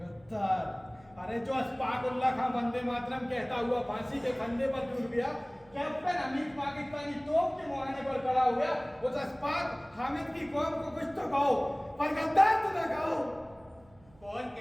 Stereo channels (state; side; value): noise; right; hum, 28 dB below the sound